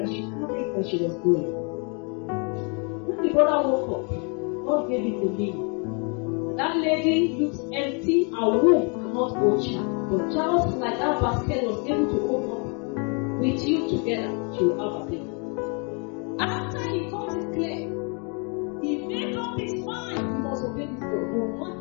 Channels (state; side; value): quieter; right; 36.3 dB